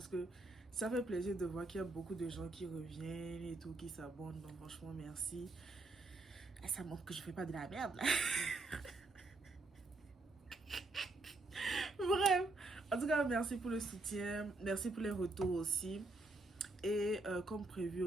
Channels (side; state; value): left; quieter; 3.1 dB